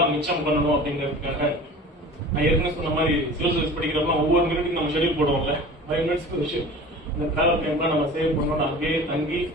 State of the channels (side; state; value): both; normal; correlation 0.39